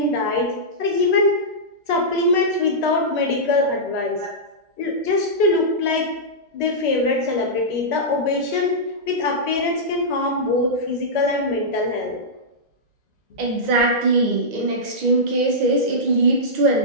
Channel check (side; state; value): left; late; 2.0 ms